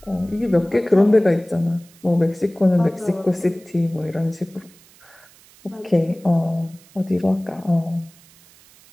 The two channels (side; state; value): right; noise; hiss, 27 dB below the sound